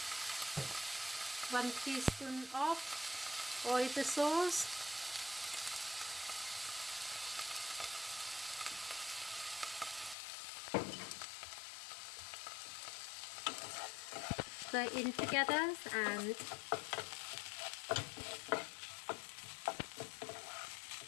one teaspoon of oyster sauce, stir in together and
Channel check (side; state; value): right; drops out; at 10.2 s